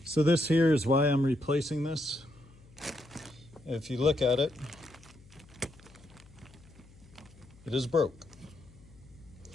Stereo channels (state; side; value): noise; left; hum, 24 dB below the sound